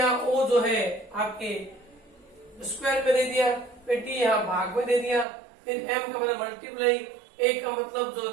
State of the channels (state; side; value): drops out; left; at 5.2 s